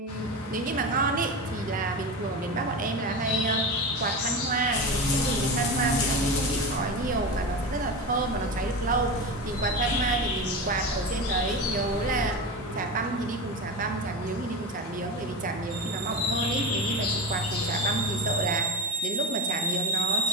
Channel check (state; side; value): normal; both; correlation 0.23